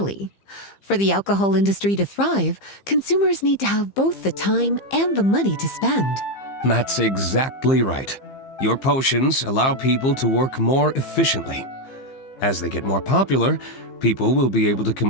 For the alcohol industry to thrive, consumers need to have both the time and the money to spend. That's exactly right. Your potions allow people to work more efficiently. As they get more popular, people will be able to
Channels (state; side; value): late; right; 15 ms